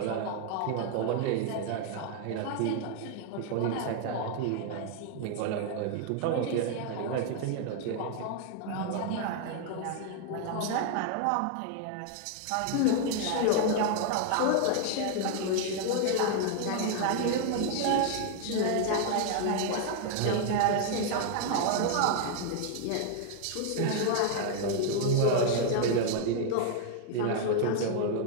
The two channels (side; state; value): both; different; correlation 0.00